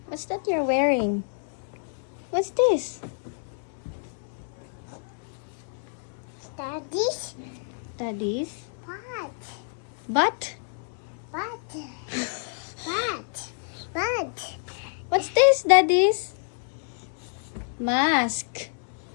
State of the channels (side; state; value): right; silent; 59 dB below the other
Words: What's that you're wearing? What's this? Daddy's Daddy's? butt. Butt? Butt. Butt. Butt. What's this, Daddy's? Mask.